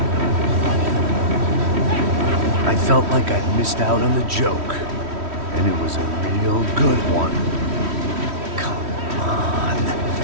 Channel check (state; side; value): late; left; 3.1 ms